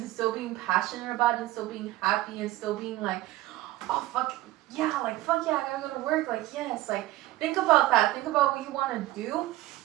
still being passionate about it and still being happy and still being like, oh fuck yeah, I gotta go to work, like yes, like think about that. Think about what you want to do,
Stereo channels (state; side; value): quieter; left; 16.9 dB